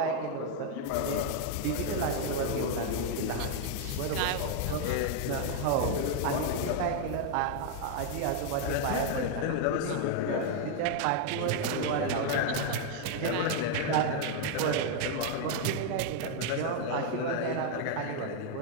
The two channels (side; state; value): both; different; correlation 0.00